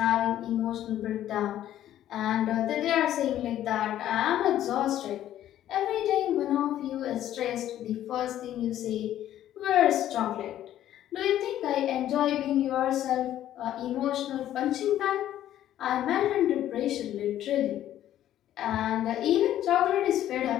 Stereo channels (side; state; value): right; quieter; 12.2 dB